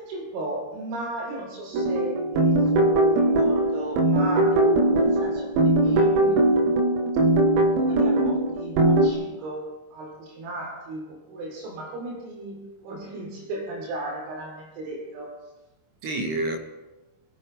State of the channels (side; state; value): left; late; 26 ms